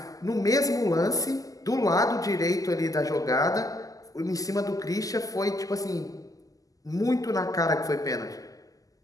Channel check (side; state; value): right; late; 0.17 ms